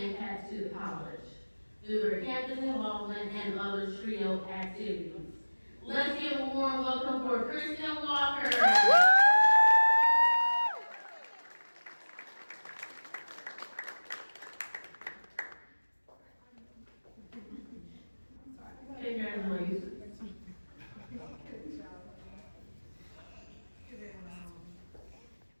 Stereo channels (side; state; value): both; inverted; correlation -1.00